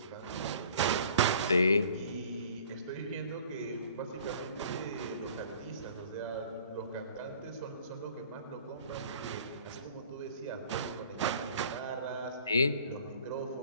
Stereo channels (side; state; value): both; inverted; correlation -0.51